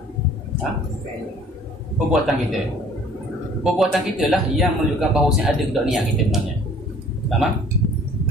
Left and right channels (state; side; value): normal; both; correlation 0.53